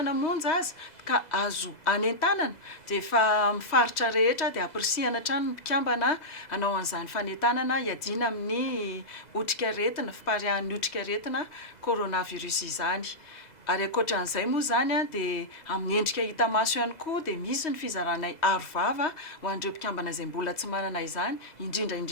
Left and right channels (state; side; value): late; right; 2.0 ms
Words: monja azy ka azo anentanana dia efa mifaritra rehetra dia ampirisihana hatrany mpikambana hanao an'izany fanentanana hiadiana amin'ny otrika aretina fiparihan'ny otrika aretina coronavirus izany. Ary ankoatran'izay moa zany dia amin'ny endrika hita maso ihany koa dia misy ny fizaranay arovava ho an'ireo mpikambana izay mbola tsy manana izany